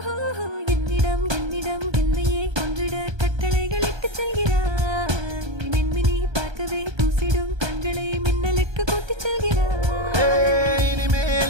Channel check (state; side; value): late; left; 1.3 ms